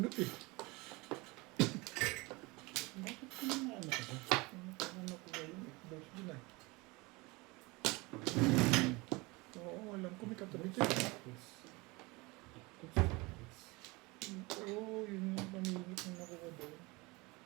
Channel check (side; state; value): left; quieter; 24.4 dB